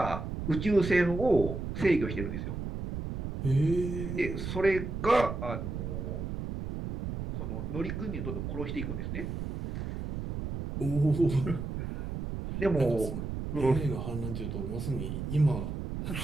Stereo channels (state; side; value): noise; right; rumble, 5 dB below the sound